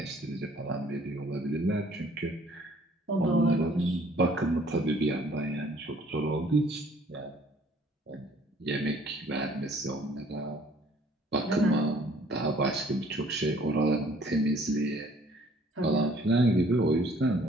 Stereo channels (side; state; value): both; normal; correlation 0.58